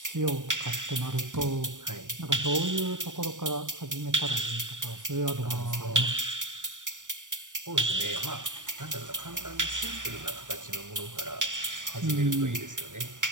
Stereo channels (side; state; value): left; late; 0.87 ms